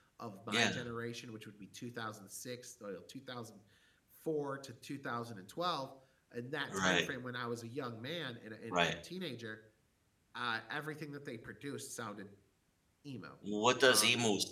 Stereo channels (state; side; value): identical; both; correlation 1.00